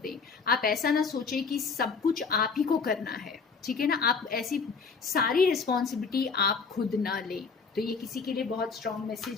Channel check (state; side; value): quieter; right; 5.1 dB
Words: दें। आप ऐसा ना सोचें कि सब कुछ आप ही को करना है, ठीक है ना, आप ऐसी सारी रिस्पॉन्सिबिलिटी आप खुद ना लें। तो ये किसी के लिए बहुत स्ट्रांग